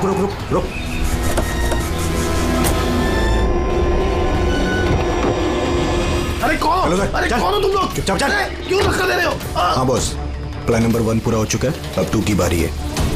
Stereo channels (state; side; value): identical; both; correlation 1.00